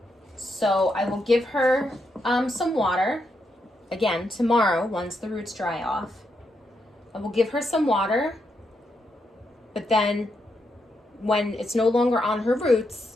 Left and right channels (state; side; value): normal; both; correlation 0.81